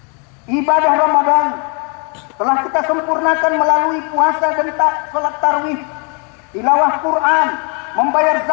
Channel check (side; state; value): right; quieter; 35.8 dB